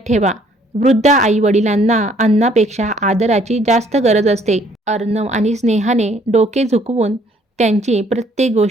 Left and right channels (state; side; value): normal; both; correlation 0.62